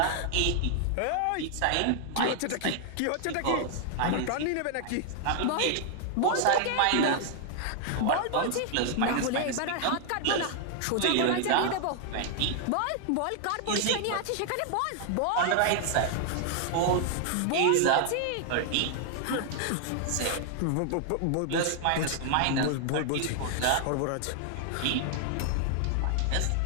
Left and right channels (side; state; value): both; different; correlation 0.00